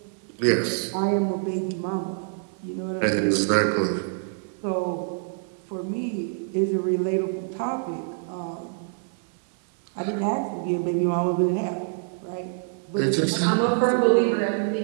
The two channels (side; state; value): left; silent; 61 dB below the other